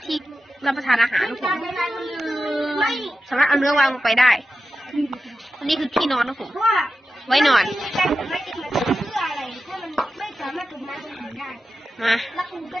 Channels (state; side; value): normal; both; correlation 0.91